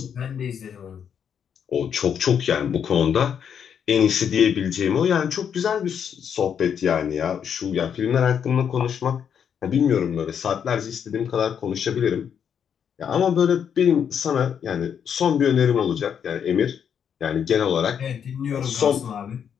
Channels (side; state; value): right; quieter; 7.9 dB